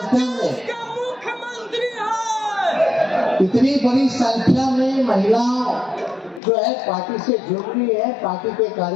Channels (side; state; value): right; drops out; at 6.4 s